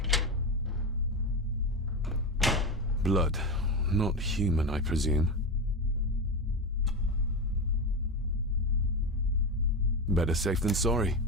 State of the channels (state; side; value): normal; both; correlation 0.17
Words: Blood. Not human, I presume. Better safe than sorry.